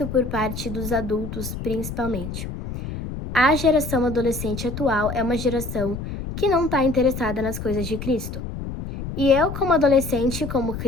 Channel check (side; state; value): left; noise; rumble, 7 dB below the sound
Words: por parte dos adultos, principalmente. A geração adolescente atual é uma geração que não está interessada nas coisas de Cristo. E eu, como adolescente, como